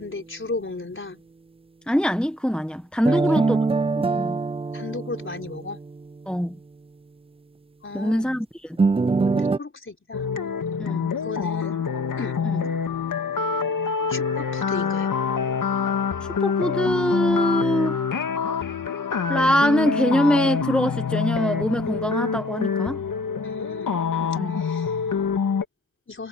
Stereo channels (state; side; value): normal; both; correlation 0.56